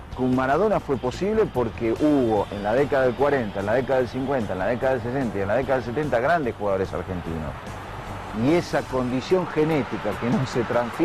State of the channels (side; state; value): both; identical; correlation 1.00